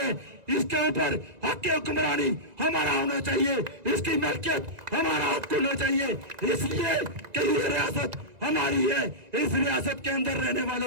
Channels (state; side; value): late; left; 1.9 ms